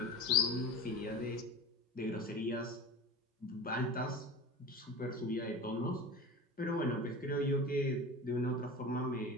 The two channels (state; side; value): normal; both; correlation 0.34